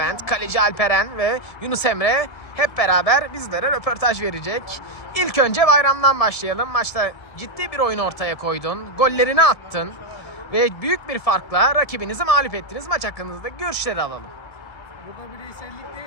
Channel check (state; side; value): late; right; 1.7 ms